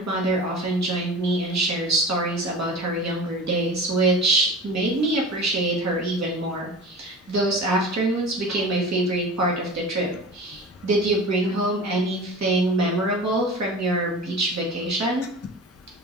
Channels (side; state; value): both; normal; correlation 0.35